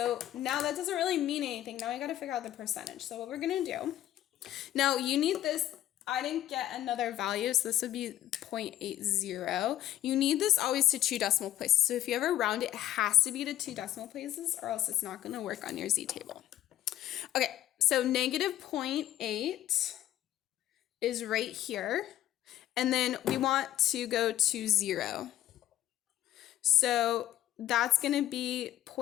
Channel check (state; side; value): quieter; right; 13.1 dB